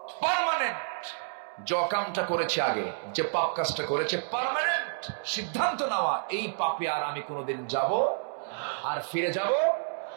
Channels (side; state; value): left; silent; 58 dB below the other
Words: পার্মানেন্ট, যে কামটা করেছে আগে, যে পাপ কাজটা করেছে, পার্মানেন্ট সিদ্ধান্ত নেওয়া, এই পাপে আর আমি কোনোদিন যাব আর ফিরে যাব